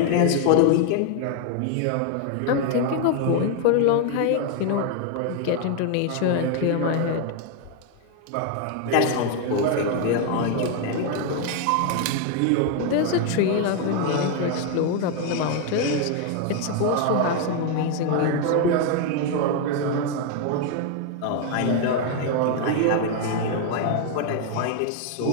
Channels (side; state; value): both; different; correlation 0.01